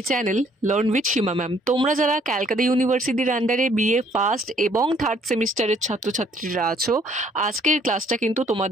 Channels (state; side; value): normal; both; correlation 0.63